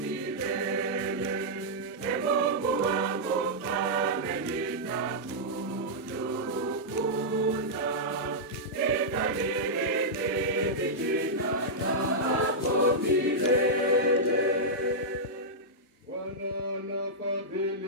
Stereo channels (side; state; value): both; normal; correlation -0.09